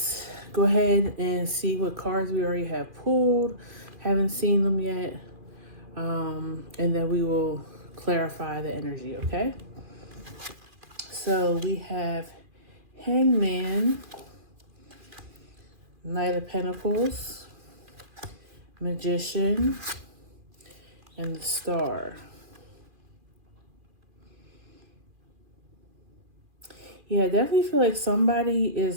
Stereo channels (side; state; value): left; late; 2.4 ms